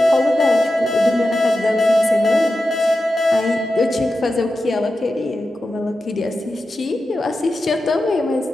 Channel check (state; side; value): normal; both; correlation 0.91